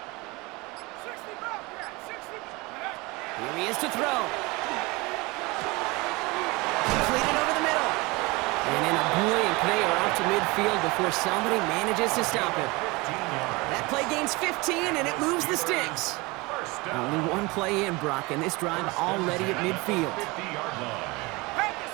60 Bobcat. 60. Here he is to throw. Completed over the middle. And in a blink, they are off to midfield before somebody manages to stop him. That play gains 15, and it moves the sticks. Only one play in, Brock, and this drive already at midfield. 50-yard line. Back to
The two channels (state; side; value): quieter; left; 24.3 dB